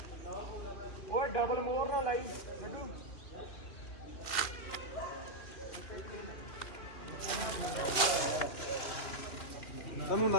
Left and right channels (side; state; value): right; late; 3.2 ms